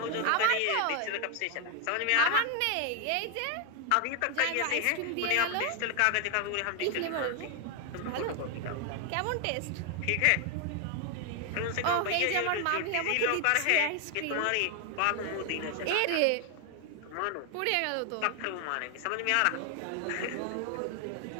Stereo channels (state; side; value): different; both; correlation 0.00